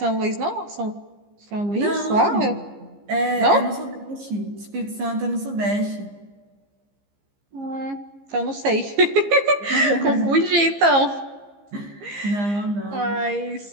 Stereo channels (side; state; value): left; late; 15 ms